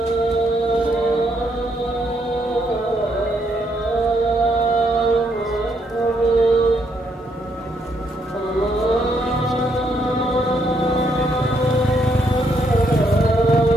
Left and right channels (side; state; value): both; normal; correlation 0.74